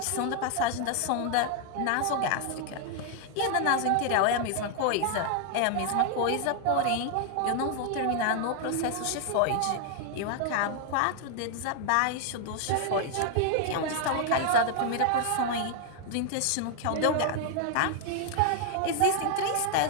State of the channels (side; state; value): both; different; correlation 0.00